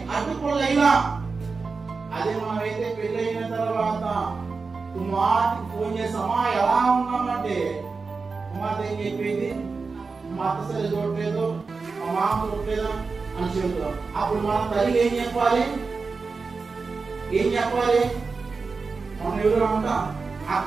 అడ్డుకోలేలా. అదే మనమైతే పెళ్లి అయిన తర్వాత కుమార్తెకి ఫోన్ చేసామా ఎలా ఉన్నామంటే కుమార్తె ఏం చెప్పింది? మా అత్త సరి చూడలేదు, మా మామ చూడలేదా అని చెబుతాం. అప్పుడు మన తల్లి ఏం చెప్పాలి? మనం ఎవరు అంట ఆ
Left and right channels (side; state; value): left; quieter; 4.5 dB